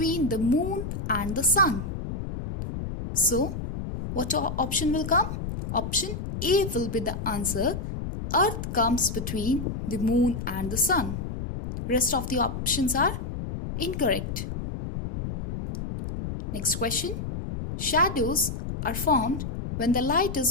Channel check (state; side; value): noise; left; rumble, 6 dB below the sound